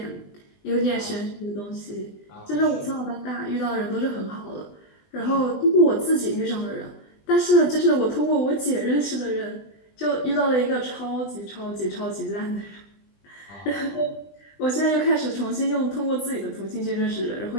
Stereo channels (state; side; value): late; right; 20 ms